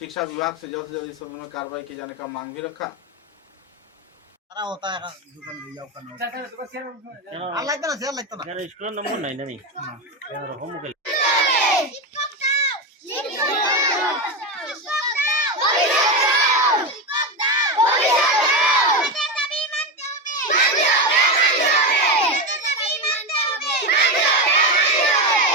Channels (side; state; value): both; normal; correlation 0.15